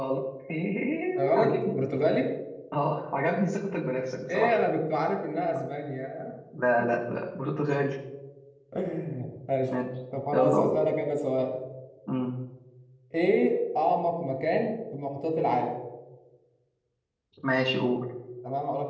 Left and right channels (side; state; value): both; identical; correlation 1.00